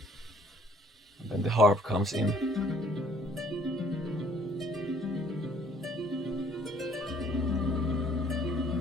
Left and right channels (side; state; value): both; normal; correlation 0.60